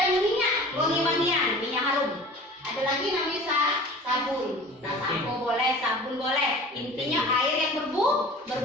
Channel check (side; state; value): both; normal; correlation 0.42